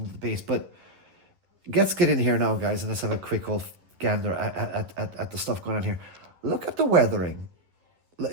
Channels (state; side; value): late; left; 11 ms